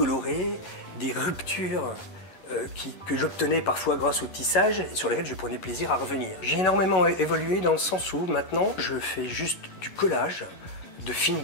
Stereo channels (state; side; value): late; right; 11 ms